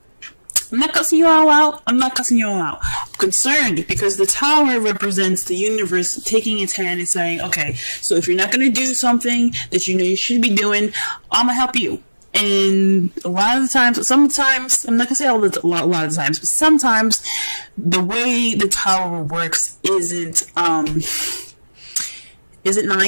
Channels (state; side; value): inverted; both; correlation -1.00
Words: I'm not cussing you all out. I'm concerned because the Tower represents the universe taking its hand and saying, okay, so if you're not going to do something that you know you should be doing, I'm going to help you. And a lot of the times, sometimes, I'm not gonna say a lot of the times, but sometimes the way the Tower works isn't nice.